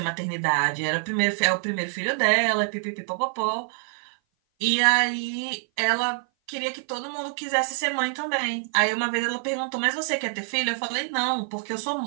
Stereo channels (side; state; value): left; silent; 57 dB below the other